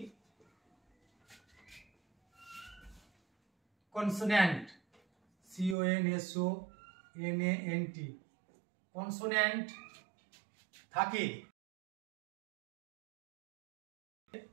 কনসোন্যান্ট, CONSONANT, কনসোন্যান্ট থাকে,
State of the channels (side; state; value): left; drops out; at 5.8 s